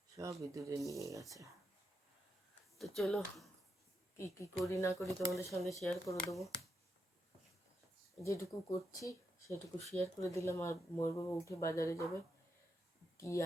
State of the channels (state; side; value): normal; both; correlation 0.83